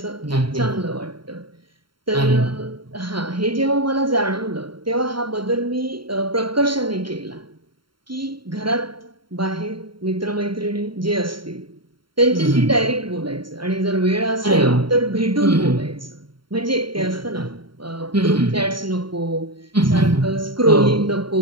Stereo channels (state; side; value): late; left; 0.73 ms